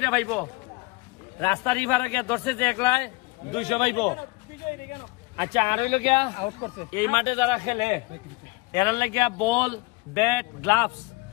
পাইব রাস্তার ইভারে ধরছে যে একলাই 200 পাইব আচ্ছা আর হইল গিয়া এই মাঠে যারা খেলে এরা লাগিয়া বল ব্যাট গ্লাভস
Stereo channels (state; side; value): quieter; right; 24.7 dB